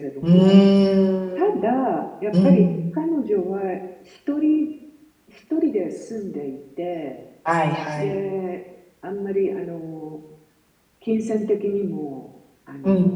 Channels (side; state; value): both; identical; correlation 1.00